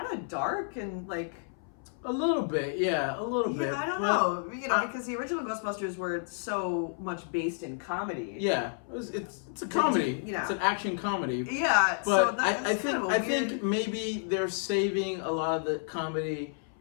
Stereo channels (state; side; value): silent; right; 57 dB below the other